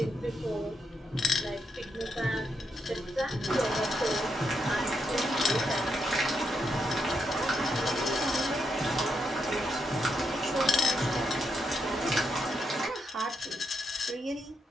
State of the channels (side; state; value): both; normal; correlation 0.81